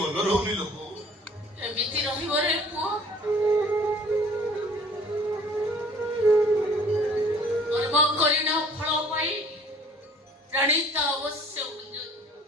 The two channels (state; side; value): normal; both; correlation 0.53